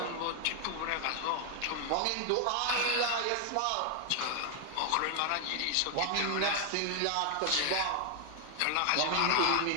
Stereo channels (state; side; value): different; both; correlation 0.01